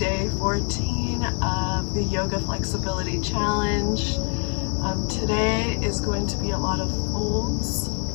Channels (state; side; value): quieter; right; 39.7 dB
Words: 14 of the Yoga Flexibility Challenge. Today is going to be a lot of folds,